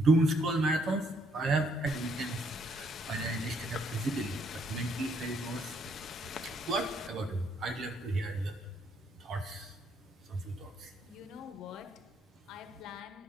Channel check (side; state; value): both; normal; correlation 0.70